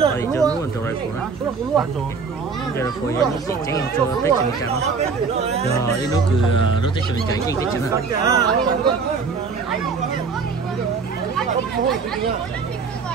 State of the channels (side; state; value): left; quieter; 5.1 dB